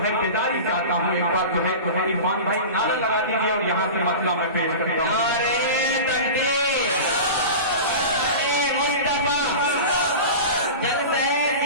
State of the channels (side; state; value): both; inverted; correlation -0.31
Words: बेदारी चाहता हूँ, एक बार जो है इरफान भाई नारा लगा दीजिए और यहाँ से मसला मैं पेश करता हूँ।